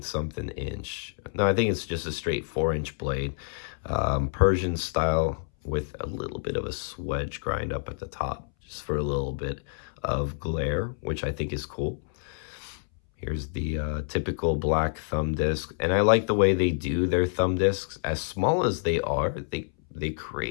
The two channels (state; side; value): silent; right; 59 dB below the other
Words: inch. No, I think it's just a straight 4-inch blade. Persian style with a little bit of a swedge grind up at the top, just for a little bit of glare, which I think is cool. Here's the typical black thumb disc. And I like the way they do their thumb discs. As small as they are, they